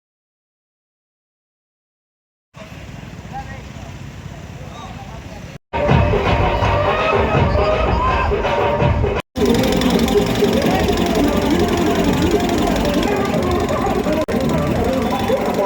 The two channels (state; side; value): identical; both; correlation 1.00